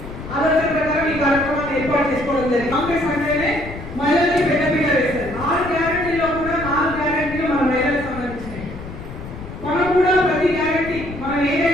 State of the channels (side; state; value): left; noise; rumble, 12 dB below the sound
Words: ఆలోచన ప్రకారం ఈ కార్యక్రమాన్ని ఏర్పాటు చేసుకోవడం జరిగింది. కాంగ్రెస్ అంటేనే మహిళల్ని పెద్దపీట వేస్తారు. 6 గ్యారెంటీలో కూడా 4 గ్యారెంటీలు మన మహిళలకు సంబంధించినవి. మనం కూడా ప్రతి గ్యారెంటీ మనం